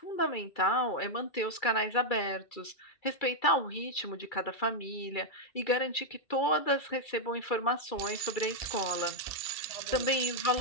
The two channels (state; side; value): late; right; 2.3 ms